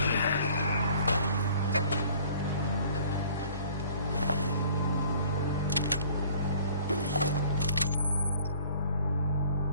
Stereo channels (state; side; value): inverted; both; correlation -0.53